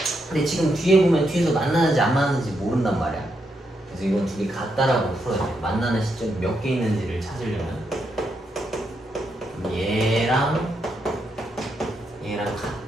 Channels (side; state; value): both; normal; correlation 0.81